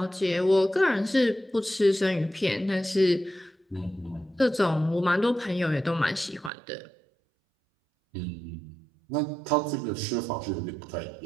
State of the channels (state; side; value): drops out; left; at 6.5 s